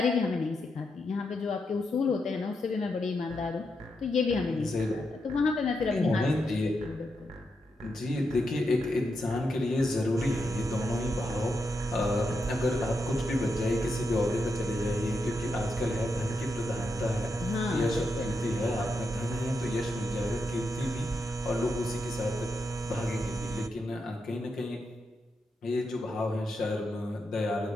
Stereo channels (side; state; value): both; normal; correlation 0.84